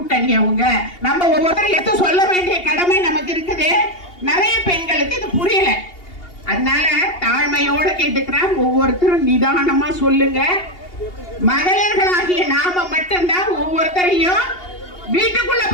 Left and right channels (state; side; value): late; right; 2.8 ms